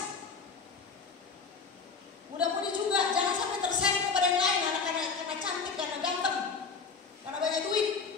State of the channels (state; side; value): quieter; right; 5.1 dB